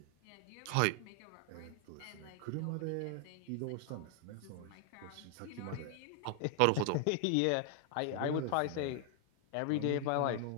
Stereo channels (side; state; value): both; different; correlation 0.00